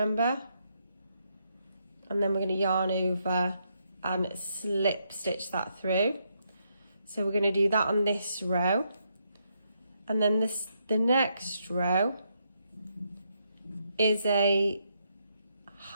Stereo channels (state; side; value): inverted; both; correlation -0.78